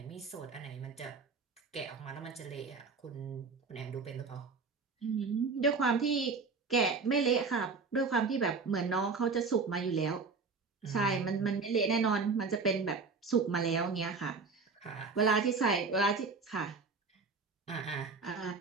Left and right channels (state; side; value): quieter; left; 4.6 dB